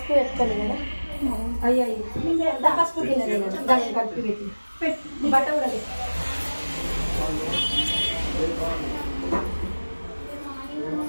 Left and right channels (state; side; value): inverted; both; correlation -1.00